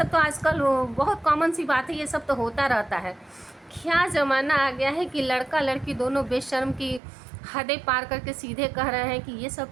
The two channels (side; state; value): left; drops out; at 7.0 s